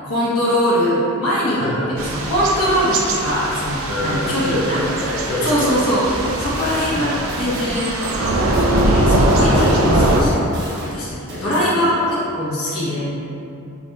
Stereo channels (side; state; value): both; normal; correlation 0.33